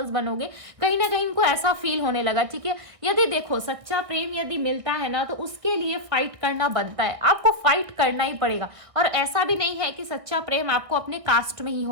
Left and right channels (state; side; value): late; left; 1.6 ms